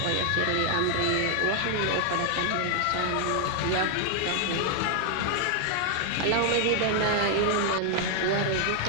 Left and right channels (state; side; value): different; both; correlation 0.00